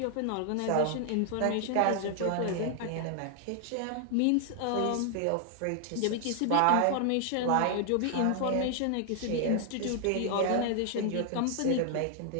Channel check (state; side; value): different; both; correlation 0.00